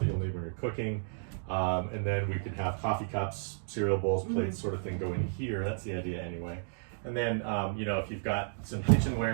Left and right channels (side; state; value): left; silent; digital silence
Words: you'll need when you're cooking. And then we could have coffee cups, cereal bowls, plates, sort of thing go in here. That's the idea anyway. And then, you know, if you've got some